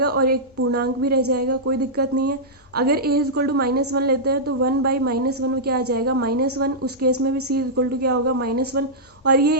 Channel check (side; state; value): both; normal; correlation -0.11